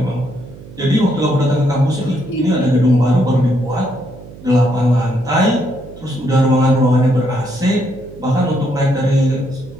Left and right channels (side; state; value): right; noise; hum, 18 dB below the sound